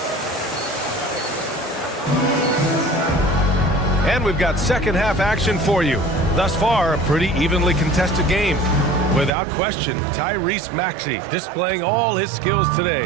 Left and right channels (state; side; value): drops out; left; at 9.3 s